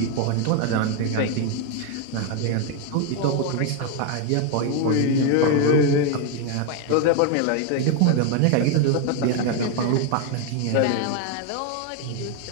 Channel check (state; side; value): different; both; correlation 0.01